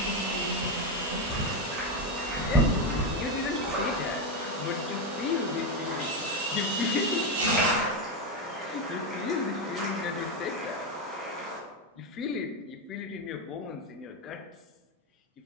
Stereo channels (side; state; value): both; normal; correlation 0.08